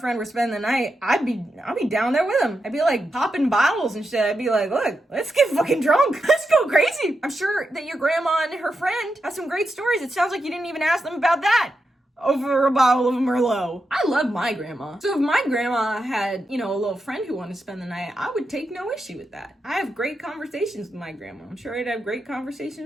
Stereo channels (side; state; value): both; normal; correlation 0.87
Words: were spending the night, I'd be down there with them. I'd be like popping bottles and shit. I'd be like, look, let's get fucking drunk. Let's go crazy. I'm sure that your grandma and her friend have some great stories. It sounds like you didn't even ask them about that over a bottle of Merlot. I love my grandma. So if my grandma had, a little friend who wanted to spend the night, I would take no issue with that. I have great conversations with my grandma. I'm sure I'd have great